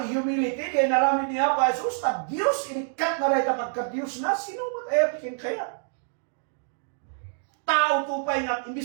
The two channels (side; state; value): left; silent; digital silence